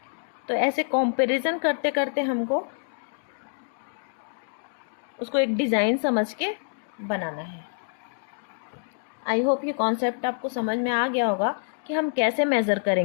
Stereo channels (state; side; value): silent; right; digital silence